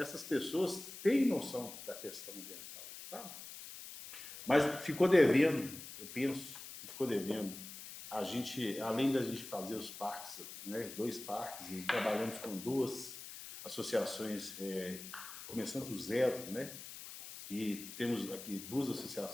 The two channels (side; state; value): left; noise; hiss, 12 dB below the sound